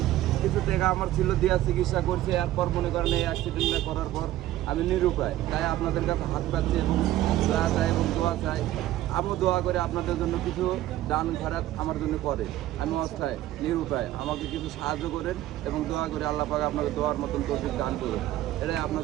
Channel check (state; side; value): quieter; left; 14.5 dB